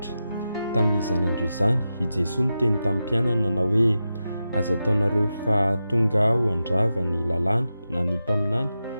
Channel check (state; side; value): inverted; both; correlation -0.90